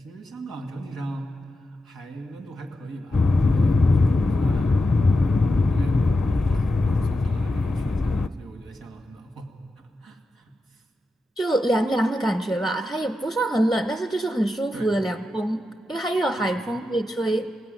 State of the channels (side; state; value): both; normal; correlation 0.89